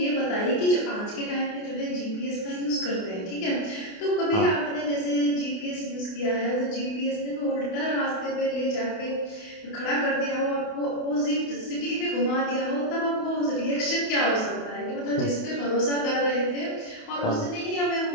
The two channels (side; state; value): right; late; 28 ms